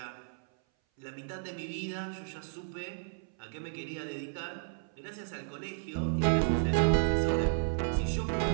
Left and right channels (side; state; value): left; silent; 56 dB below the other